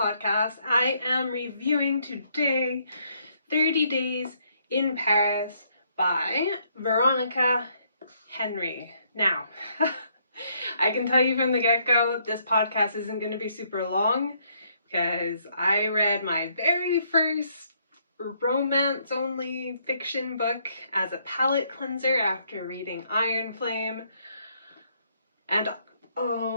I am reviewing today 30 Days in Paris by Veronica Henry. Now, I can tell you from the get-go, this podcast isn't going to be super long because I read my very first romance-only fiction book as a palate cleanser after reading Iron Flame. And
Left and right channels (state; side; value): inverted; both; correlation -0.70